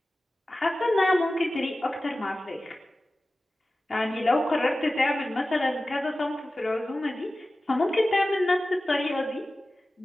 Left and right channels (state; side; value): normal; both; correlation 0.96